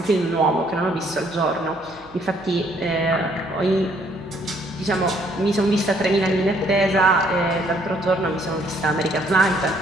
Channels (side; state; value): right; noise; hum, 26 dB below the sound